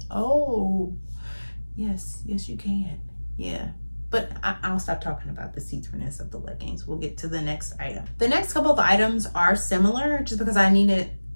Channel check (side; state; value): both; inverted; correlation -1.00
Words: oh, yes, you can. Yeah. But I'll stop talking about the see-throughness of the leggings. We'll get to the next item. The next couple of items are similar just because I needed